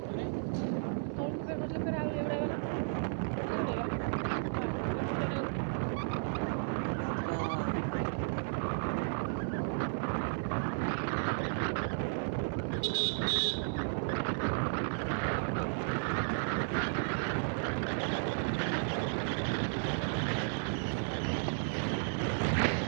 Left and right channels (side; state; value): left; silent; 55 dB below the other